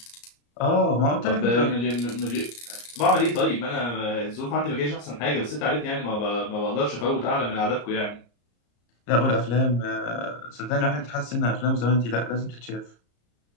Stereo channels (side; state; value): right; late; 34 ms